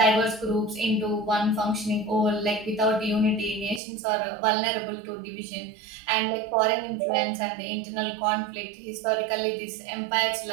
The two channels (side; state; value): left; drops out; at 3.8 s